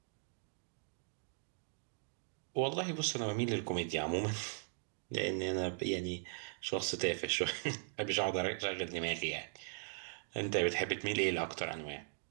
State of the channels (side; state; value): left; silent; digital silence